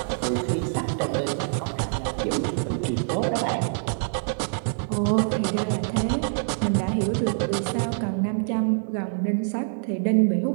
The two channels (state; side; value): silent; left; digital silence